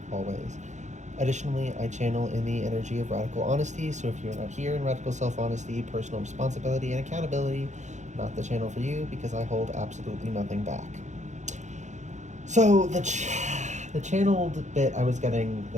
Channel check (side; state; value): left; late; 0.34 ms